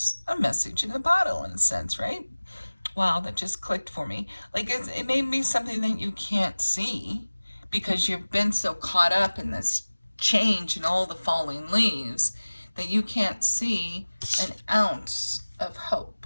a message in a bottle in a sense, right? Wow, that just clicked for me. Like it may be something that you can't see because you've been so caught up in this change and all the falling leaves that you can't see an ounce of hope.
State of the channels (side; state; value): both; inverted; correlation -1.00